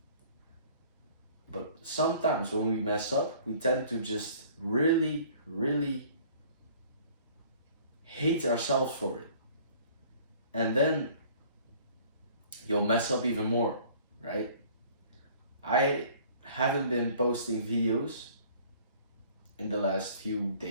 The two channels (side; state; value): both; inverted; correlation -0.52